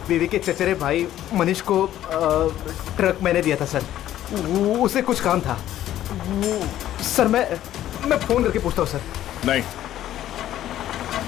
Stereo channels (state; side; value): quieter; right; 12.6 dB